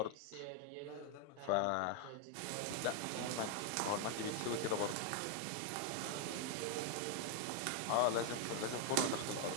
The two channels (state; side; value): different; both; correlation 0.00